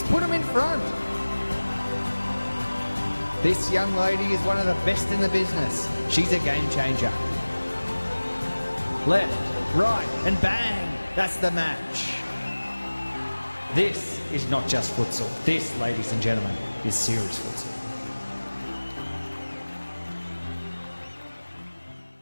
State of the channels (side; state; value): both; inverted; correlation -1.00